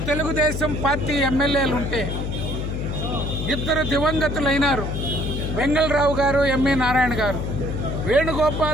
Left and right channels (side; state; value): left; noise; hum, 3 dB below the sound